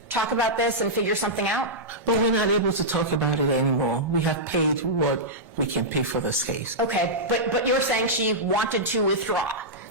talk about this and figure something out? But we're not able to talk about it anymore. We have paid what we can pay for this case. Okay, but you're saying she wanted to withdraw.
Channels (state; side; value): normal; both; correlation -0.11